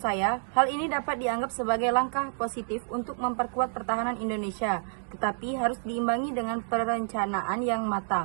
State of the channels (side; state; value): left; silent; digital silence